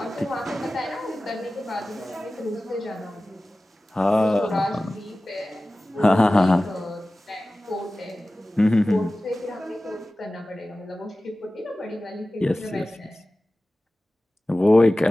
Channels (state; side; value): normal; both; correlation 0.96